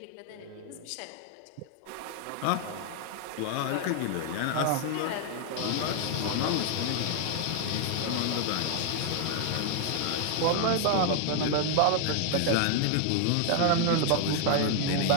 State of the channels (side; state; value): both; different; correlation 0.00